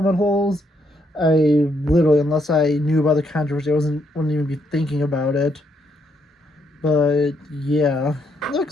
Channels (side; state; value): both; normal; correlation 0.75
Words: holes. I literally, unless I knew about the controversy, I wouldn't even be thinking about it. But yeah,